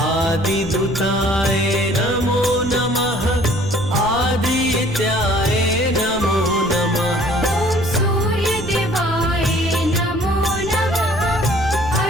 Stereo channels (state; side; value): noise; right; rumble, 12 dB below the sound